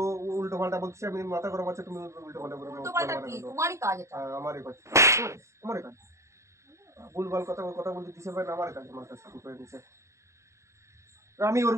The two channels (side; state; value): left; late; 0.14 ms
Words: উল্টো পাল্টা বলছে, আমি মাথা খারাপ আছে, তুমি উল্টো পাল্টা করে উল্টো পাল্টা কি? তোমারই কাজ এটা। আমারই কাজ, আমারই কাজ, ভুলভাল কথা বলতে দিছে ভাই, আমার কাজ, আমার কাজ শুরু করে দিছে, আমি